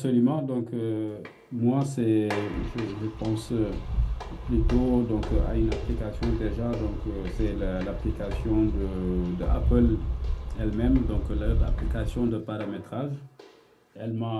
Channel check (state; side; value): identical; both; correlation 1.00